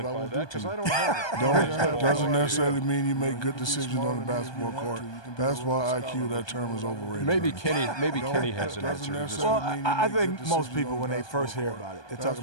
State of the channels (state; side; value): late; right; 1.2 ms